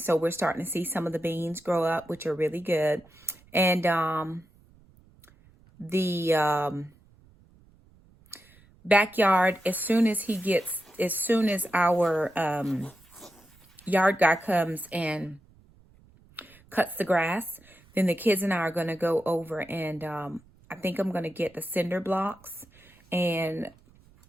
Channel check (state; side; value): noise; right; rumble, 28 dB below the sound